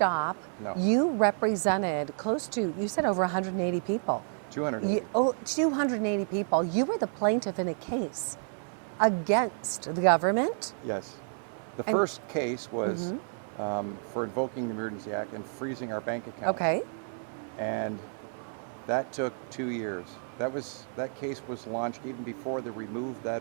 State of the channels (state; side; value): silent; left; 57 dB below the other